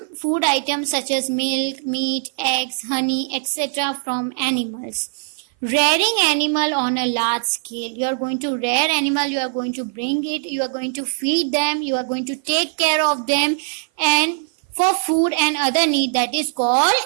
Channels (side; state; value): left; silent; 57 dB below the other